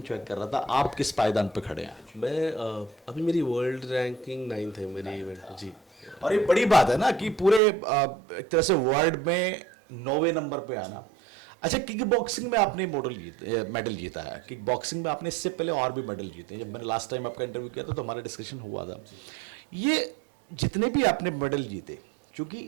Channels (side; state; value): left; drops out; at 7.6 s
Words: चेक कर रहा था। आप किस पायदान पे खड़े हैं? मैं अभी मेरी वर्ल्ड रैंकिंग 9th है मेरी इवेंट जी। और ये बड़ी बात है ना कि पूरे एक तरह से वर्ल्ड में 9वें नंबर पे आना। अच्छा, किक बॉक्सिंग में आपने मेडल जीता है। किक बॉक्सिंग में आपने इससे पहले और भी मेडल जीते हैं। जब मैंने लास्ट टाइम आपका इंटरव्यू किया था तो हमारा डिस्कशन हुआ था। ये जितने भी आपने मेडल जीते,